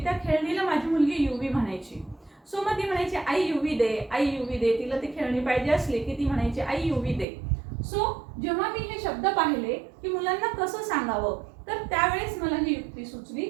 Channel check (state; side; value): drops out; left; at 7.2 s